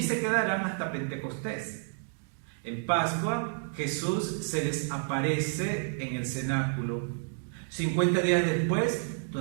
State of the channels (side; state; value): left; silent; digital silence